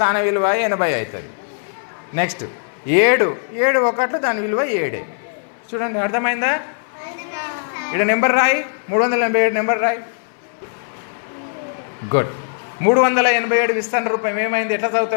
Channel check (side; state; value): right; silent; 62 dB below the other